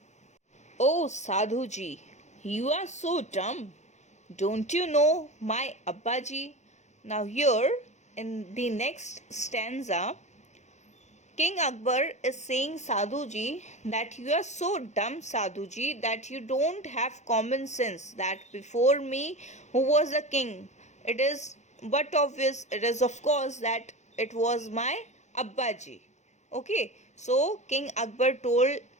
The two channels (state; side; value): late; right; 0.33 ms